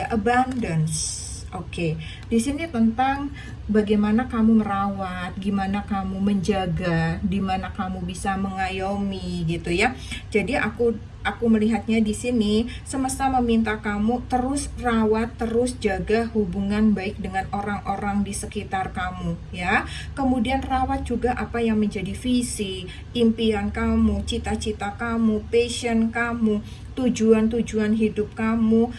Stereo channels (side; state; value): both; identical; correlation 1.00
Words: abundance. Oke, di sini tentang bagaimana kamu merawat, gimana kamu menjaga, dimana kamu bisa mengayomi gitu ya. Jadi aku melihatnya di sini semesta meminta kamu terus rawat, terus jaga hubungan baik dengan orang-orang di sekitar kamu ya. Kemudian rawat juga apa yang menjadi visi, impian kamu, cita-cita kamu, passion kamu, tujuan-tujuan hidup kamu